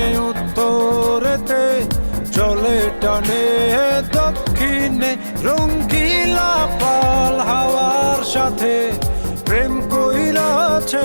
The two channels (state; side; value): inverted; both; correlation -1.00